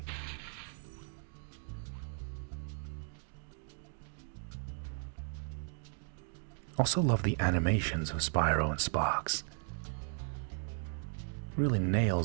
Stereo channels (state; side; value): silent; left; 54 dB below the other